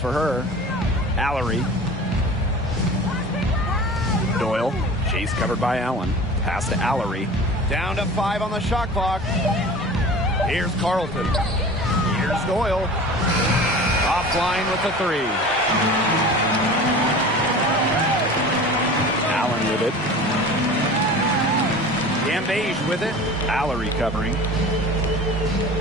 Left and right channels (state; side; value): normal; both; correlation 0.38